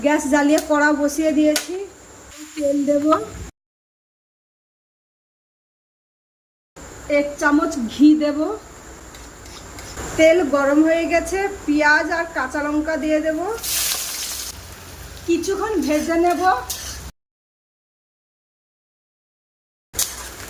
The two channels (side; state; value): both; identical; correlation 1.00